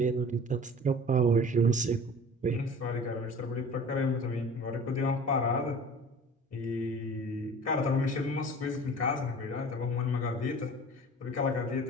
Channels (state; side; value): normal; both; correlation 0.42